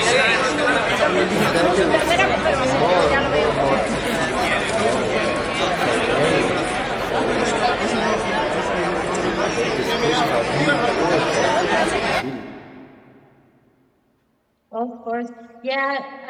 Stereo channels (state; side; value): identical; both; correlation 1.00